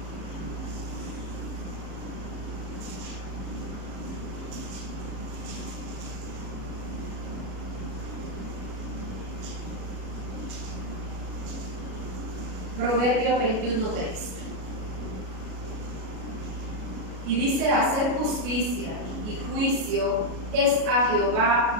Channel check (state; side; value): late; left; 37 ms